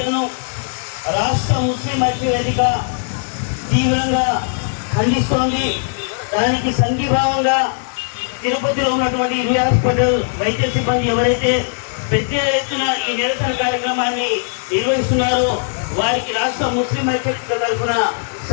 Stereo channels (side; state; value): right; silent; digital silence